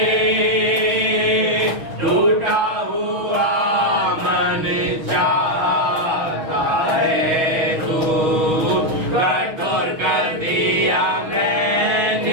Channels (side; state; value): left; late; 6.3 ms